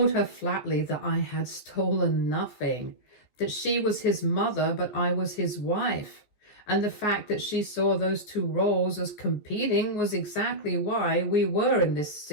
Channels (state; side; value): late; right; 15 ms